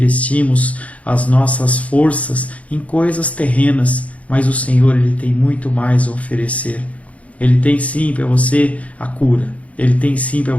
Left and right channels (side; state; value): right; late; 0.066 ms